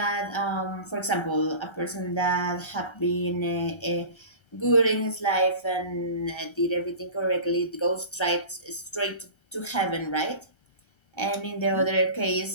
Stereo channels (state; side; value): late; right; 1.3 ms